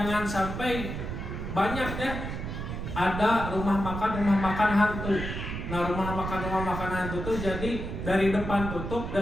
sampai banyak ya ada rumah makan hantu. Nah, rumah makan hantu itu jadi dari depan tutup,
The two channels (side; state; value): right; noise; rumble, 5 dB below the sound